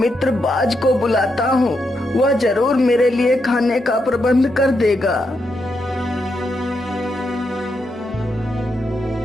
बाज को बुलाता हूँ वह जरूर मेरे लिए खाने का प्रबंध कर देगा।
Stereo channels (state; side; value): normal; both; correlation 0.82